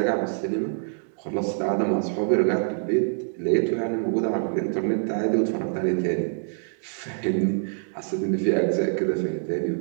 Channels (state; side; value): silent; left; digital silence